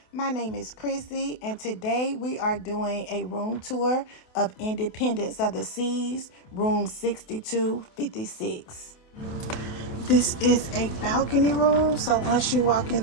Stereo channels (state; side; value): late; right; 28 ms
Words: My name is Chrissy, and today we are doing a room tour of Independence of the Seas, room 6256. This is a balcony room, so once you walk in